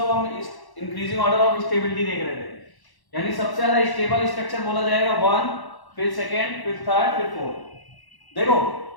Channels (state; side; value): late; right; 1.1 ms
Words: हम इंक्रीजिंग ऑर्डर ऑफ स्टेबिलिटी देख रहे थे। यानी सबसे ज्यादा स्टेबल स्ट्रक्चर बोला जाएगा 1, फिर सेकंड, फिर थर्ड, फिर फोर्थ। देखो